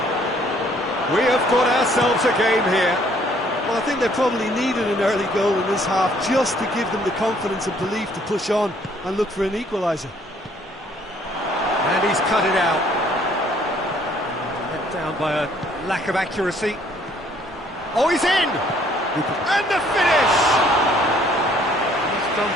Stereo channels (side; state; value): both; normal; correlation 0.62